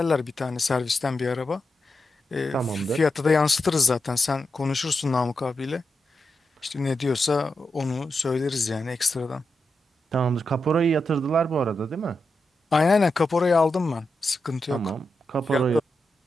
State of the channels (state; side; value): normal; both; correlation 0.87